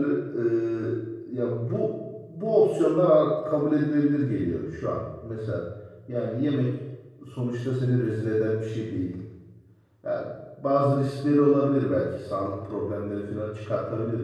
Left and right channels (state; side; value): identical; both; correlation 1.00